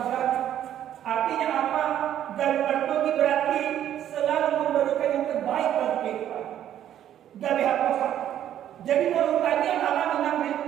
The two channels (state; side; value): quieter; left; 11.0 dB